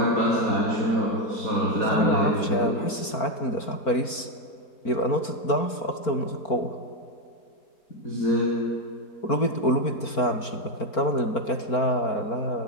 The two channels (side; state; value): right; late; 4.4 ms